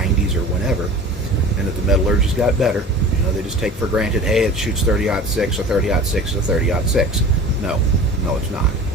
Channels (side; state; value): both; normal; correlation 0.39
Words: or whenever, and that the metallurgy's got better. They just take for granted, hey, it shoots 30-06 or 30-06 or 30-06. No, it's not.